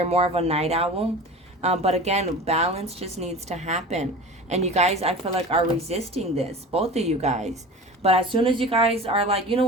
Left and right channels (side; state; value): both; normal; correlation 0.35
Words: more of a night owl. But again, balance just needs to happen. And you guys, I feel like, are resisting this. Both of you guys. But as soon as you guys are like, you know